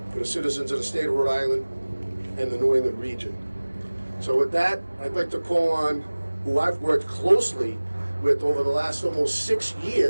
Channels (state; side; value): inverted; both; correlation -1.00